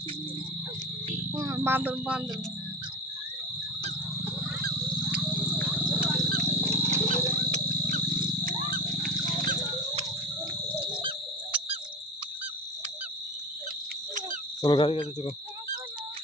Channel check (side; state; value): both; normal; correlation 0.30